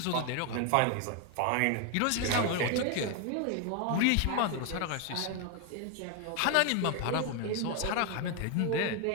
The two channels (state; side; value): different; both; correlation 0.01